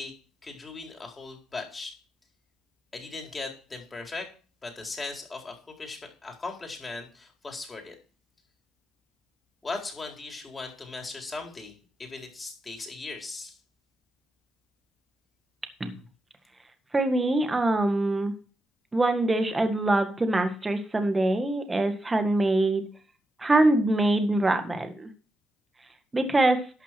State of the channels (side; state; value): both; normal; correlation 0.87